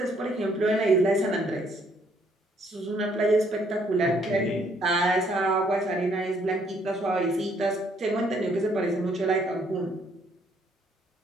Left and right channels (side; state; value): both; normal; correlation 0.67